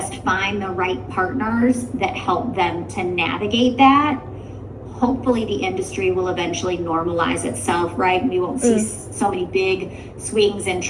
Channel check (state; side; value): identical; both; correlation 1.00